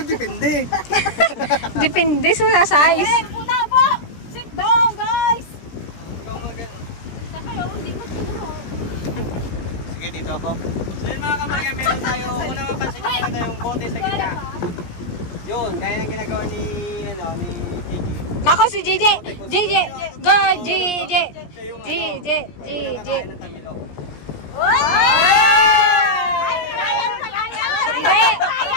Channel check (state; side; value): late; right; 17 ms